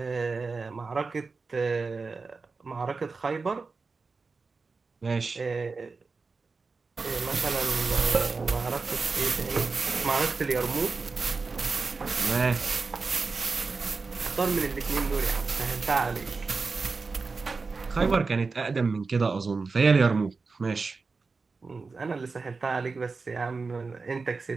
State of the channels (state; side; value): quieter; left; 4.3 dB